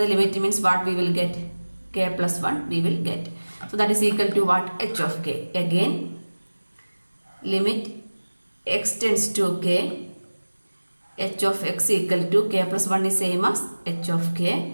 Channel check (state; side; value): inverted; both; correlation -1.00